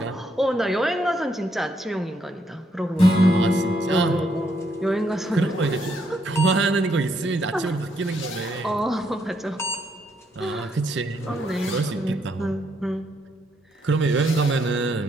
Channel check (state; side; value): normal; both; correlation 0.74